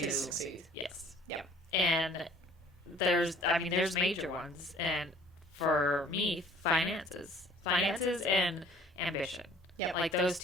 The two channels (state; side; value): normal; both; correlation 0.54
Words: succeed. Yes. Yep. And there's major ones. And for me, finances and ambition. Yep. Like, those